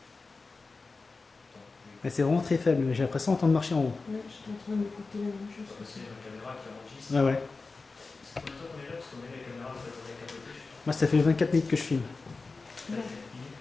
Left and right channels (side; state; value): right; quieter; 3.9 dB